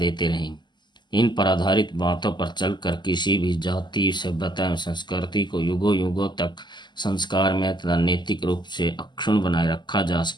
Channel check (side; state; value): right; late; 0.21 ms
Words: रहेंगे। इन पर आधारित बातों पर चलकर किसी भी जाति, सभ्यता एवं संस्कृति को युगों युगों तक संस्कार में तथा नैतिक रूप से अक्षुण्ण बनाए रखा जा